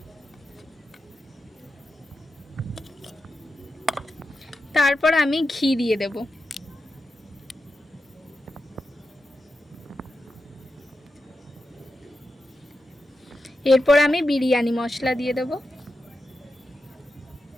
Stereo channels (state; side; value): normal; both; correlation 0.89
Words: তারপর আমি ঘি দিয়ে দেব। এরপর আমি বিরিয়ানি মশলা দিয়ে দেব।